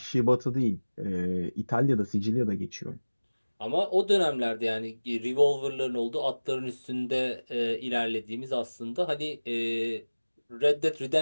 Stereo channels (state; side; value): inverted; both; correlation -1.00